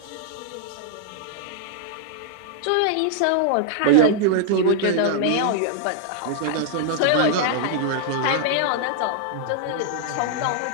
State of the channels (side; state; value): both; different; correlation -0.01